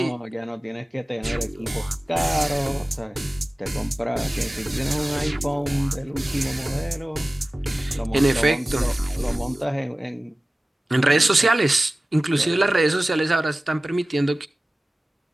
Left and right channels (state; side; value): normal; both; correlation 0.97